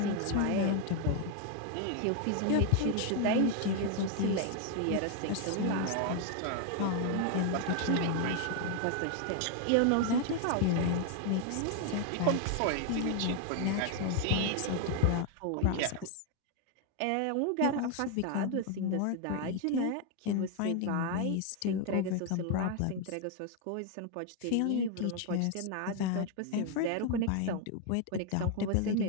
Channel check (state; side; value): different; both; correlation 0.01